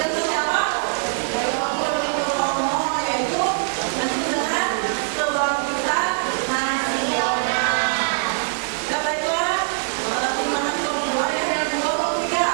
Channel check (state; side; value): silent; left; digital silence